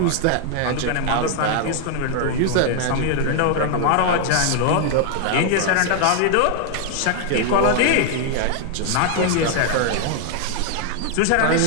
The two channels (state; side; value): different; both; correlation 0.00